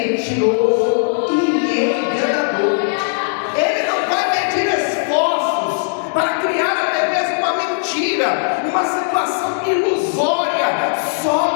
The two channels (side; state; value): right; silent; digital silence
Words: e enganador. Ele não vai medir esforços para criar até mesmo uma mentira, uma situação ilusória, só